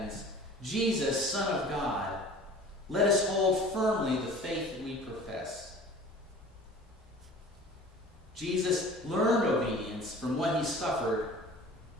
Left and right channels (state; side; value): normal; both; correlation 0.43